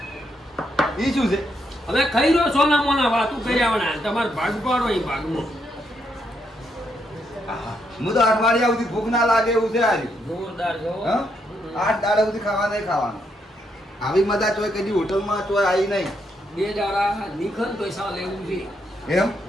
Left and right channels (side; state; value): both; normal; correlation 0.77